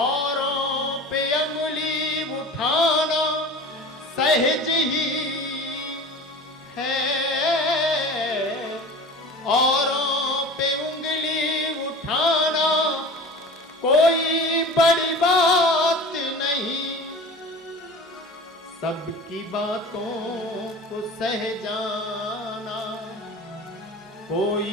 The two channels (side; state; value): both; normal; correlation 0.37